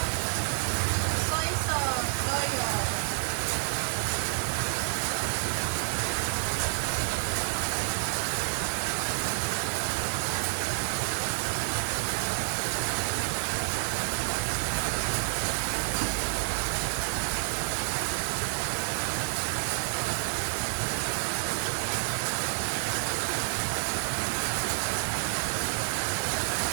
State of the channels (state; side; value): silent; left; digital silence